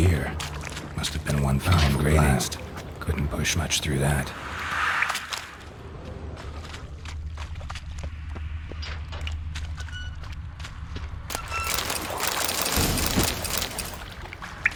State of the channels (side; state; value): both; identical; correlation 1.00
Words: Must have been one fine blast. Couldn't push much through that.